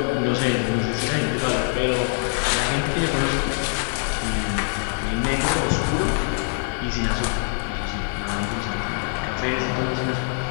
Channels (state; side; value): silent; right; 63 dB below the other